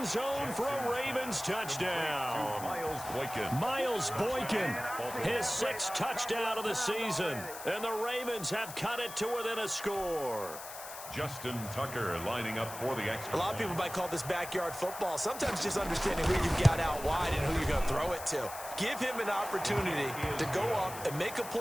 zone for a Ravens touchdown. Miles Boykin, his 6th touchdown of the season. And the Ravens have cut it to within a score. Justin Tucker lining up for the extra. A lot of people might call this backyard football. Sometimes just understanding who you've got out wide and who you're going to throw it to. Give him an opportunity to go up and make a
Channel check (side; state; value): left; noise; hiss, 12 dB below the sound